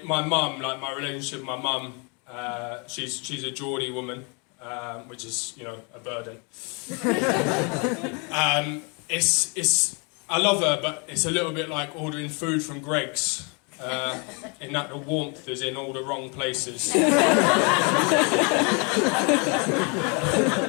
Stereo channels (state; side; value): quieter; right; 33.6 dB